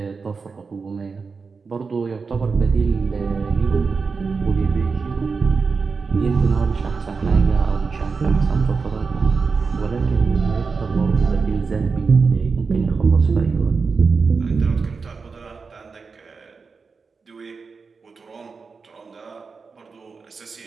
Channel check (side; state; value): left; quieter; 4.8 dB